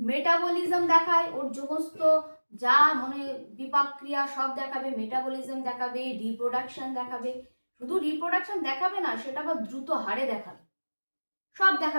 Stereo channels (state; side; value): inverted; both; correlation -1.00